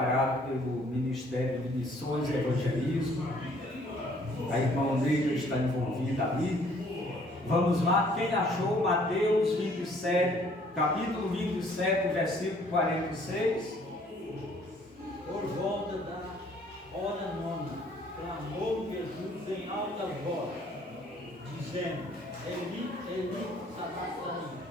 pelo Ministério de Missões e Evangelismo. A irmã Neila está envolvida ali. Vamos lá, quem achou Mateus 27, capítulo 27, versículo 46? Por volta da hora nona, clamou Jesus em alta voz, dizendo: Eli, Eli, sabachthani,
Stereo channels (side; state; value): both; normal; correlation 0.60